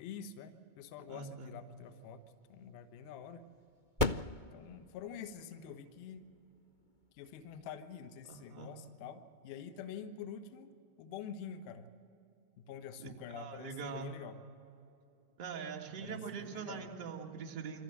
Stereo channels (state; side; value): late; left; 2.2 ms